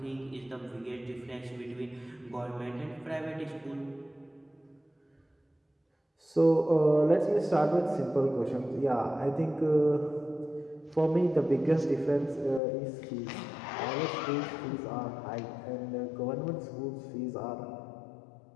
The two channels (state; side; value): drops out; right; at 12.6 s